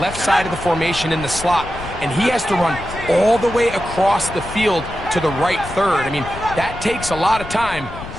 left side of the formation in the slot, and he has to run all the way across the field to the right third. I mean, that takes a lot of time.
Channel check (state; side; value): noise; left; rumble, 12 dB below the sound